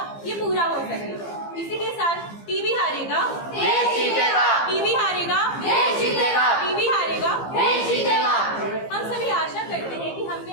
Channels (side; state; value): right; late; 15 ms